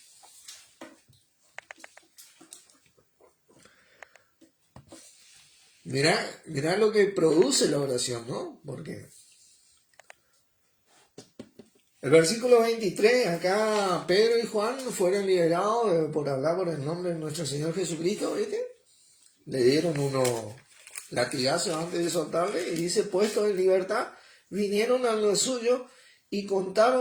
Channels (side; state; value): both; identical; correlation 1.00